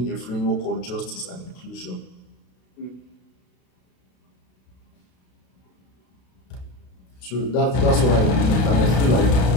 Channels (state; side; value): late; right; 32 ms